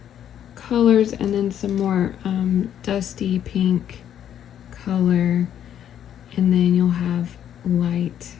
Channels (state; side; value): quieter; right; 10.0 dB